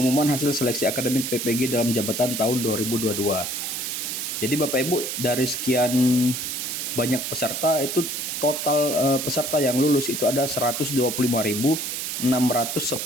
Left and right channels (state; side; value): noise; right; hiss, 3 dB below the sound